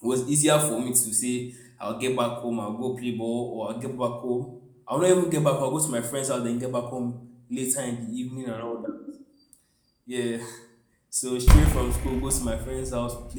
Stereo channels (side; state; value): both; identical; correlation 1.00